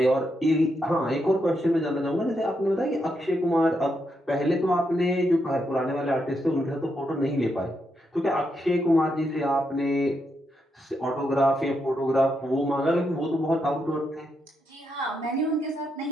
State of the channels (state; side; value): normal; both; correlation 0.81